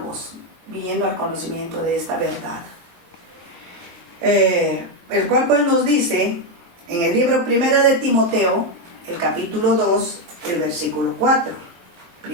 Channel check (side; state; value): left; late; 22 ms